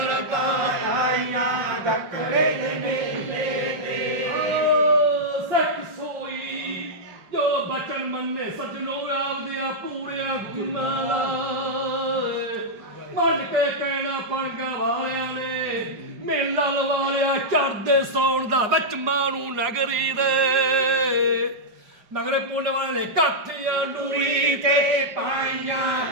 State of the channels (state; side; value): late; left; 4.8 ms